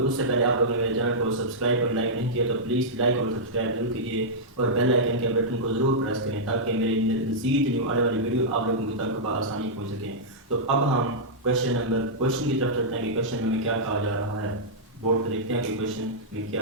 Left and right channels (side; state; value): both; normal; correlation -0.10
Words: उससे पहले आप लोगों ने मेरे चैनल को सब्सक्राइब और लाइक नहीं किया तो प्लीज़ लाइक और सब्सक्राइब जरूर कीजिए और बेल आइकन के बटन को ज़रूर प्रेस करें ताकि मेरी मज़ीद न्यू आने वाली वीडियो आप लोगों तक आसानी पहुँच सकें। तो अब हम क्वेश्चन की तरफ चलते हैं कि क्वेश्चन में क्या कहा जा रहा है। बोर्ड पर देखते हैं कि क्वेश्चन में क्या